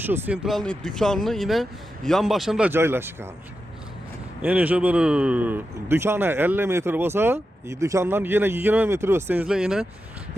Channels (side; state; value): both; normal; correlation 0.89